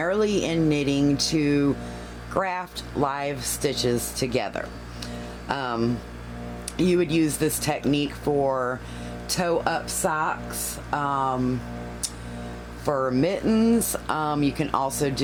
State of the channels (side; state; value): both; identical; correlation 1.00